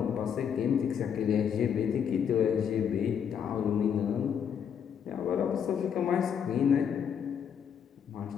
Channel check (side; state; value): right; quieter; 7.9 dB